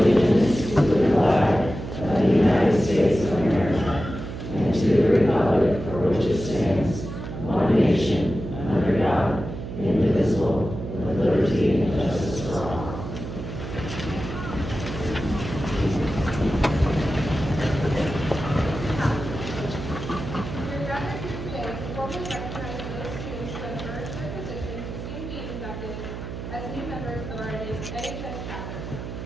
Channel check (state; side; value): noise; right; hum, 8 dB below the sound